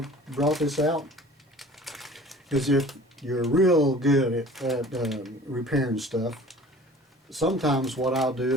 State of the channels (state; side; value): normal; both; correlation 0.46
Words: brought this out is if you're real good at repairing stuff, sometimes what I'll